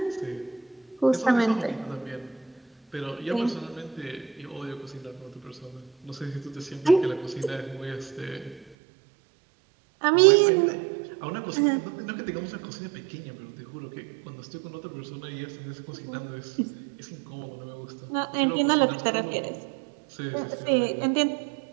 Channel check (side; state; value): left; drops out; at 8.7 s